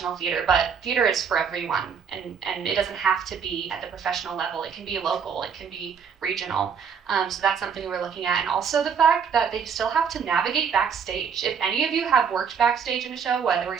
theater, but theater is for everyone, and it doesn't have to be at the professional level. It can be local, it can be regional. So that's something we're looking at. And also the fact that they still have to navigate backstage. If any of you have worked backstage in a show, whether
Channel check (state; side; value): quieter; left; 6.8 dB